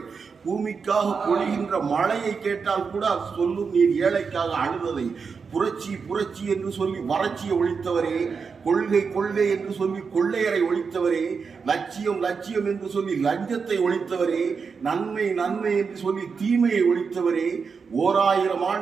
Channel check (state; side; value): quieter; left; 5.5 dB